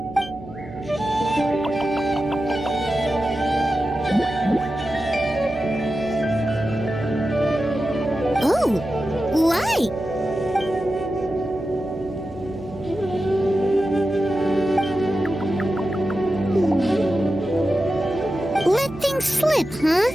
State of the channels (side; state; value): right; noise; hum, 18 dB below the sound